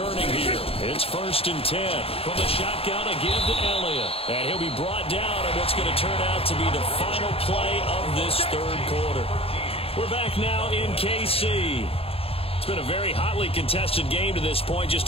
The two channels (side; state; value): right; late; 0.28 ms